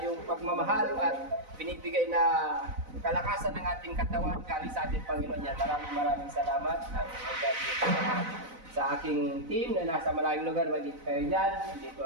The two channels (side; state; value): left; late; 4.0 ms